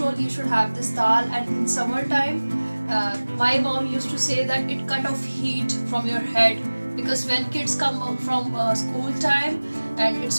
you should have this dal. And in summertime, my mom used to say that it cut off heat from your head, because when kids come from school time and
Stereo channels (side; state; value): both; inverted; correlation -1.00